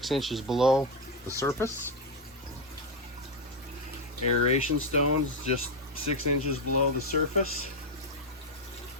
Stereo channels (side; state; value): both; normal; correlation 0.06